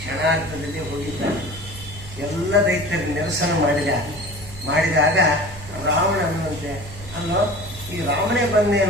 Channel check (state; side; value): normal; both; correlation 0.39